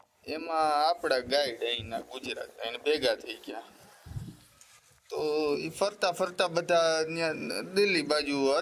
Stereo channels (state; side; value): identical; both; correlation 1.00